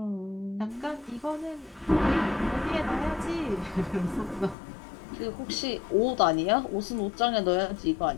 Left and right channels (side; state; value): right; drops out; at 4.5 s